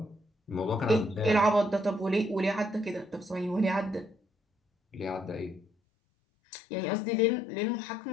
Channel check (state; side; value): drops out; right; at 5.7 s